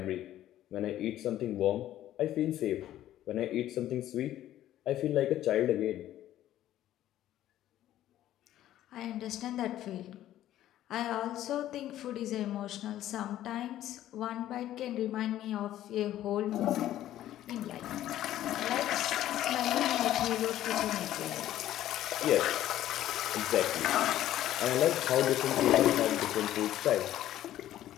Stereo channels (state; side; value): quieter; right; 13.0 dB